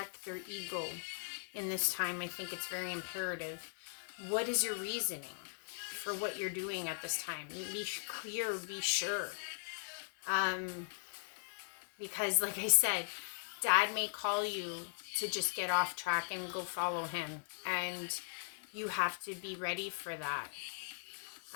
their ego in this time. I think it's very imperative. What is your reasoning for what you're doing at this time? Be clear, be sure. Because like I said, Dad may call you to just get off track and go follow him. And you have to be ready for that.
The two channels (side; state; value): right; silent; digital silence